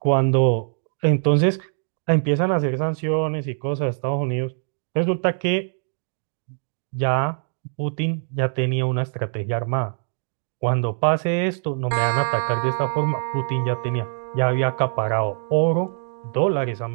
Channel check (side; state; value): left; silent; digital silence